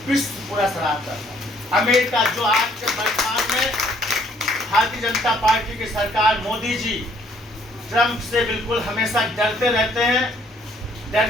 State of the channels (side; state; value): both; normal; correlation 0.64